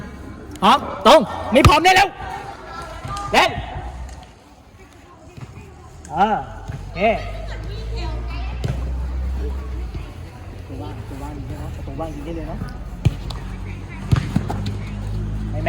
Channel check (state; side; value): identical; both; correlation 1.00